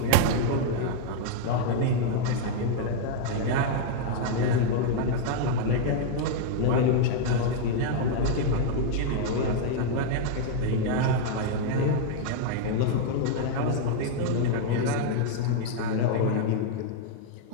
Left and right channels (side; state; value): both; different; correlation -0.01